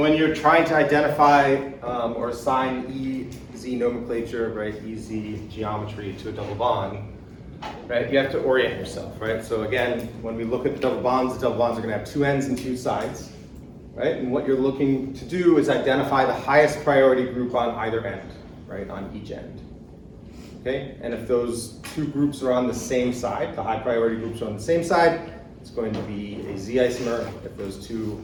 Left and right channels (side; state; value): both; identical; correlation 1.00